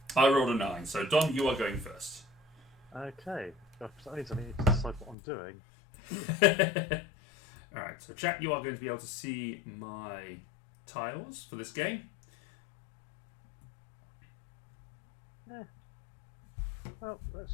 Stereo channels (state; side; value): drops out; right; at 5.2 s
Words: I rolled a 9, so Dom, you are going first. Okay, that means I need to decide what I'm doing. Alright, so chat, you are going to be able to see my tiles for this game. Yeah. Well, let's